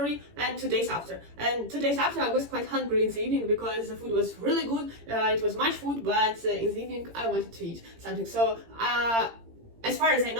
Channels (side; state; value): left; late; 18 ms